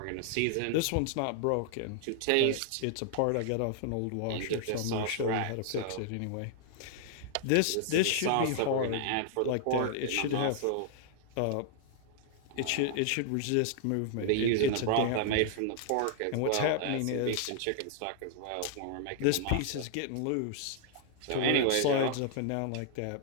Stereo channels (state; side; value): different; both; correlation 0.00